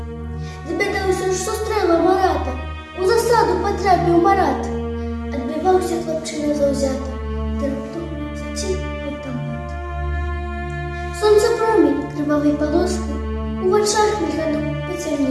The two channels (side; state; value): both; identical; correlation 1.00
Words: Довідався, що стрела Марата, у засаду потрапив Марат. Отбивався хлопчина завзято, та раптом затік автомат. Сонце промінь кривавий полоски у очах мільганом